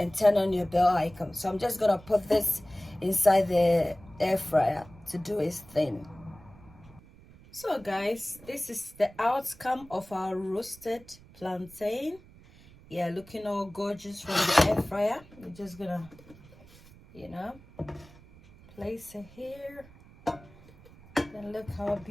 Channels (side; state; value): right; noise; rumble, 23 dB below the sound